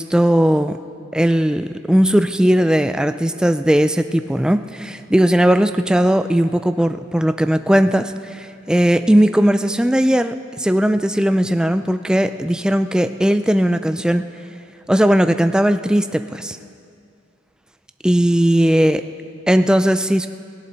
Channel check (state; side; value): normal; both; correlation 0.96